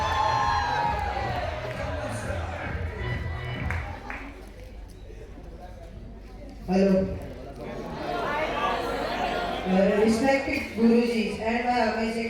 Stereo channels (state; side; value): identical; both; correlation 1.00